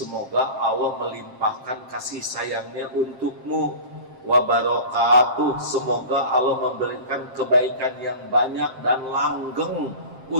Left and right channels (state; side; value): late; left; 7.6 ms